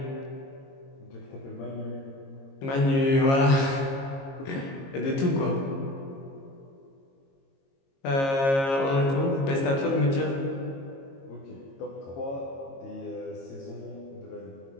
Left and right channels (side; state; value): right; late; 22 ms